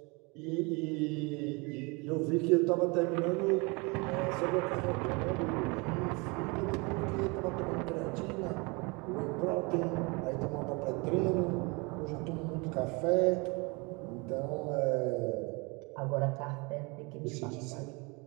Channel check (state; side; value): quieter; left; 28.6 dB